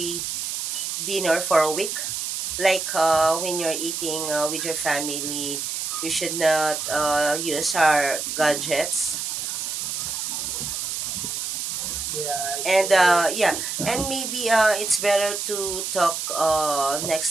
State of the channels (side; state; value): right; noise; hiss, 3 dB below the sound